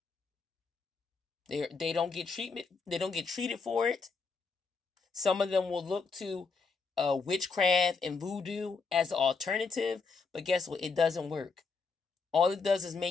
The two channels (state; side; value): quieter; right; 4.6 dB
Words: They don't get treatment. They don't get treated for it. Some of them will look to witchcraft and voodoo as an alternative, but guess what? It doesn't work. All it does is